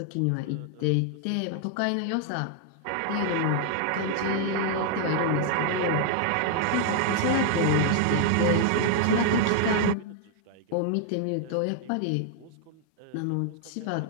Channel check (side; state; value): both; different; correlation 0.00